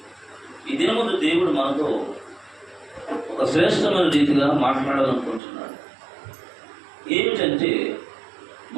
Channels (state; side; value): drops out; left; at 5.4 s